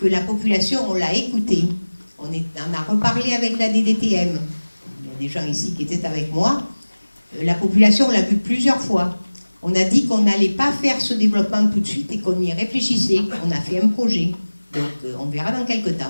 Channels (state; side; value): inverted; both; correlation -1.00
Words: que la population, on l'a écoutée, on a reparlé avec la DDTM, il y a des gens ici qui étaient avec moi, la population, on l'a vu plusieurs fois. On a dit qu'on n'allait pas faire ce développement tout de suite et qu'on y réfléchissait. On a fait un projet. Donc on verra dans quelques